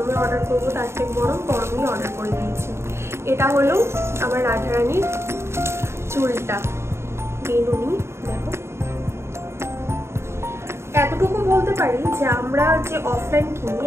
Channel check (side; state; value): left; late; 0.13 ms